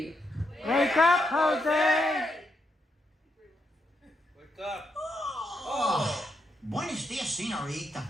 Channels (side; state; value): both; normal; correlation 0.81